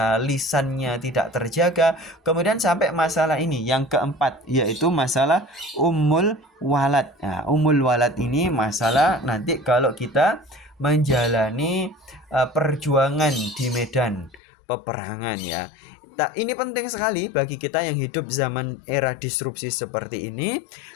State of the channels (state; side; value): drops out; right; at 14.4 s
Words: lisannya tidak terjaga. Kemudian sampai masalah ini yang keempat, yaitu masalah ummul walad. Nah, ummul walad ini masalah nanti kalau kita menjalani perjuangan di medan peperangan ya. Ini penting sekali bagi kita yang hidup zaman era disrupsi seperti ini,